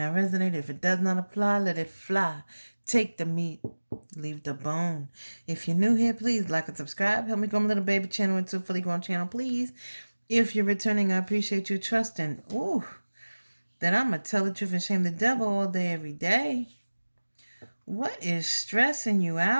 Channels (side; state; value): both; inverted; correlation -1.00